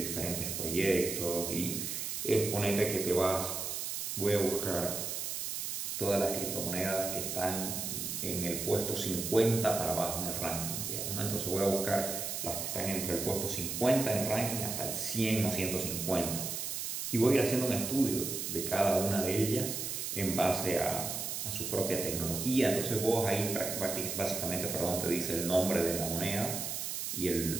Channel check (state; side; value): noise; right; hiss, 3 dB below the sound